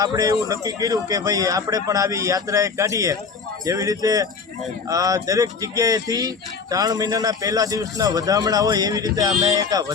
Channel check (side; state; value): right; quieter; 5.2 dB